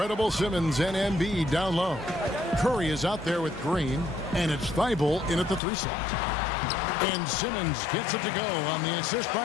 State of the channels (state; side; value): drops out; right; at 5.6 s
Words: Simmons and Embiid down low. Curry is out there with Green. And it's Thibault in at the 3 slot. And Simmons gets it to go on the assist